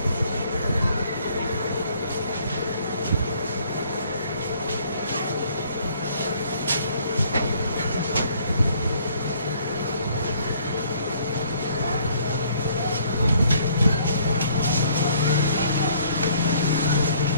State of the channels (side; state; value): both; inverted; correlation -0.61